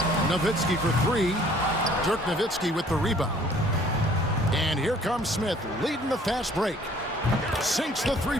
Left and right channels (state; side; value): normal; both; correlation 0.57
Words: Nowitzki for 3. Dirk Nowitzki with the rebound. And here comes Smith, leading the fast break. Sinks the